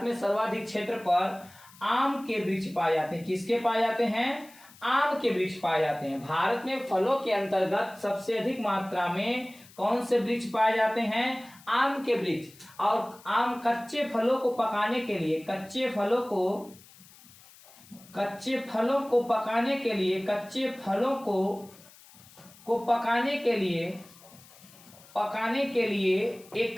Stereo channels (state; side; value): noise; left; hiss, 23 dB below the sound